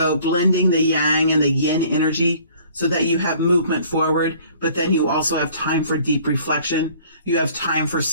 blending the yang and the yin energy so that you have movement forward, but then you also have time for deep reflection. You have time for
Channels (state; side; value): inverted; both; correlation -0.54